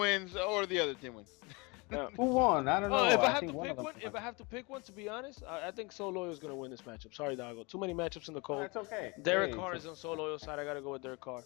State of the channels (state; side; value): quieter; right; 27.8 dB